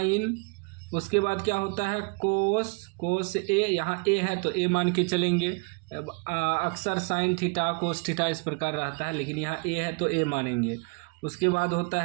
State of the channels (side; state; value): left; quieter; 33.6 dB